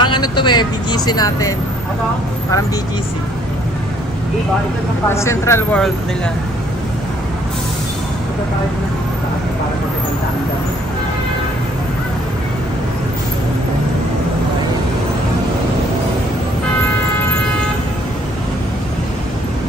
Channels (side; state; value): both; normal; correlation 0.63